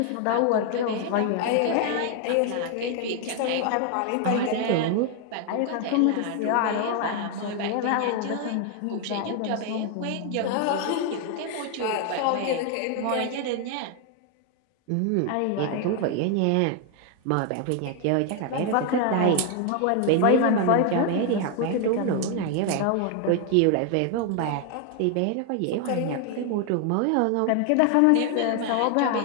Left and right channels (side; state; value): both; different; correlation 0.01